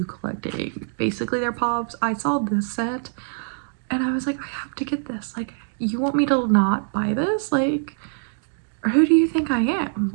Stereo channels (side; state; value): left; silent; digital silence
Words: collecting basically their pops. I saw this set and I was like, I have to get this. Like, you want me to not buy this? Like, who do you think I am?